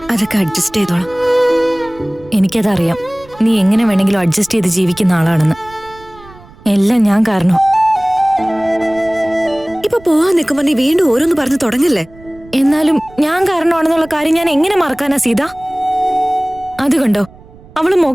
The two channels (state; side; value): noise; right; rumble, 23 dB below the sound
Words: അതൊക്കെ അഡ്ജസ്റ്റ് ചെയ്തോളാം. എനിക്കതറിയാം, നീ എങ്ങനെ വേണമെങ്കിലും അഡ്ജസ്റ്റ് ചെയ്ത് ജീവിക്കുന്ന ആളാണെന്ന്. എല്ലാം ഞാൻ കാരണം. ഇപ്പൊ പോവാൻ നിൽക്കുമ്പോ നീ വീണ്ടും ഓരോന്ന് പറഞ്ഞു തുടങ്ങല്ലേ? എന്നാലും ഞാൻ കാരണമാണെന്നുള്ള കാര്യം ഞാൻ എങ്ങനെ മറക്കാനാ സീത? അത് കണ്ടോ, അവള്